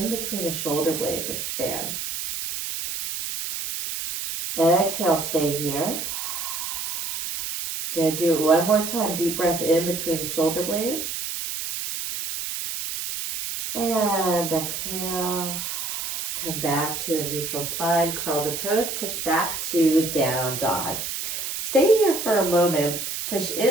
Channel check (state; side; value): noise; right; hiss, 4 dB below the sound